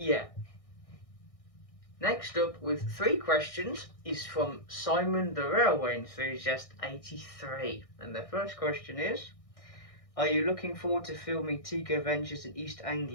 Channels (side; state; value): right; late; 1.6 ms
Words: Yeah. Next up with 3 questions is from Simon the Railway Enthusiast 83, and the first question is, are you looking forward to filming Tico Ventures in East